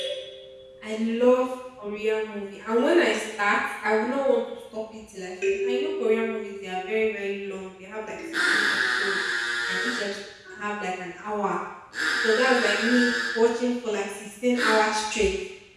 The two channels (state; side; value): identical; both; correlation 1.00